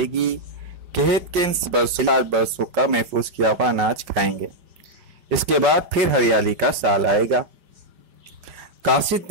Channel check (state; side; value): late; left; 5.0 ms